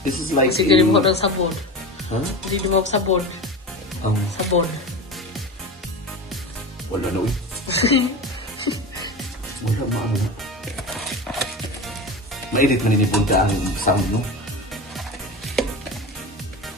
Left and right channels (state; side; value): normal; both; correlation 0.28